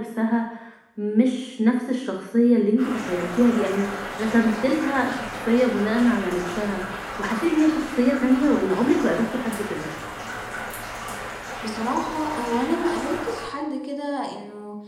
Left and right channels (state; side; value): identical; both; correlation 1.00